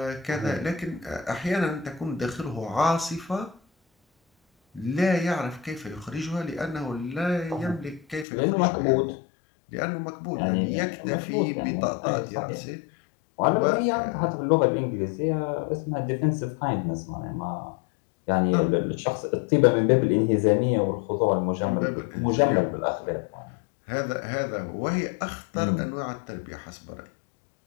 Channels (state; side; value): drops out; right; at 8.2 s